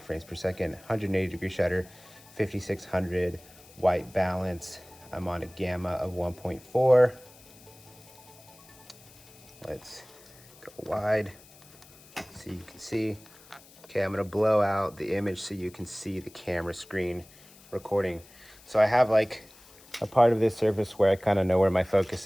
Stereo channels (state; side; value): noise; left; hiss, 24 dB below the sound